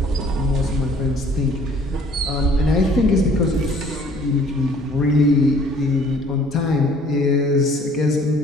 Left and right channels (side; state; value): both; normal; correlation 0.55